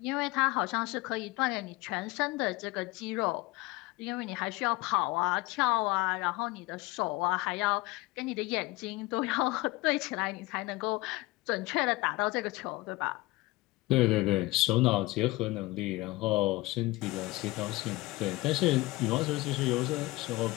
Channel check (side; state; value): right; quieter; 20.9 dB